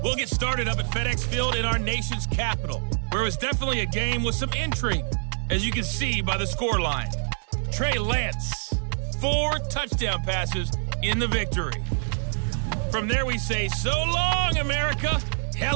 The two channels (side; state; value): left; silent; digital silence